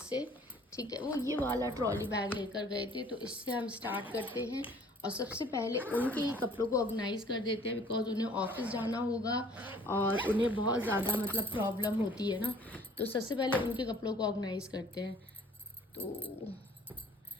से, ठीक है। वो ये वाला ट्रॉली बैग लेकर गए थे तो इससे हम स्टार्ट करते हैं। और सबसे पहले उनके ही कपड़ों को ऑर्गेनाइज कर देते हैं बिकॉज उन्हें ऑफिस जाना होगा और उन्हें बहुत ज़्यादा मतलब प्रॉब्लम होती है ना। तो सबसे पहले उनके कपड़ों को ऑर्गेनाइज करते हैं। तो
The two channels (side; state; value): both; normal; correlation 0.54